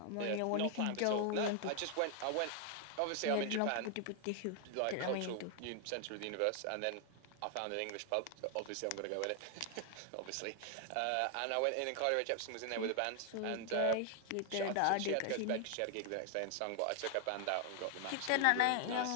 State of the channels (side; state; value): both; different; correlation 0.00